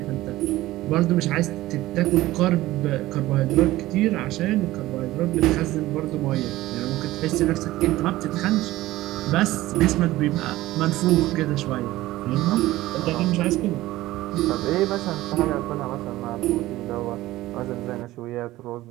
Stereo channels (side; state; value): left; quieter; 16.9 dB